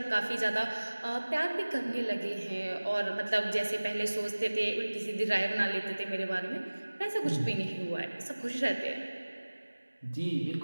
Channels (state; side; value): inverted; both; correlation -1.00